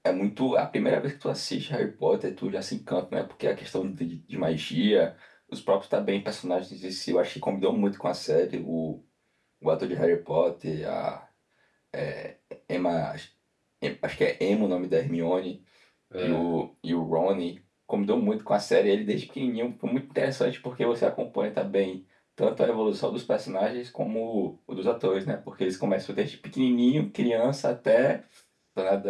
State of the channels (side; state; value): both; identical; correlation 1.00